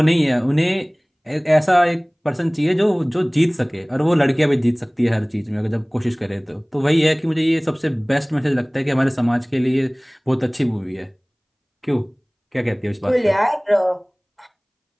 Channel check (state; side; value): identical; both; correlation 1.00